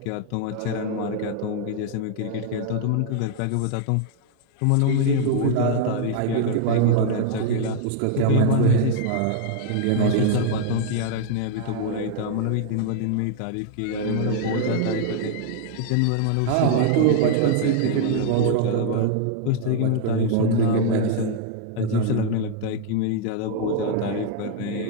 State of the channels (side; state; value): both; different; correlation 0.00